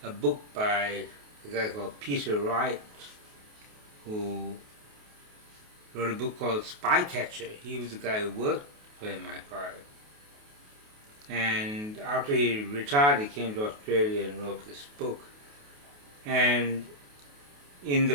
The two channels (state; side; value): late; left; 28 ms